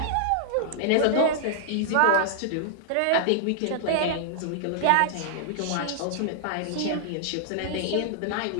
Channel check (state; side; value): different; both; correlation -0.01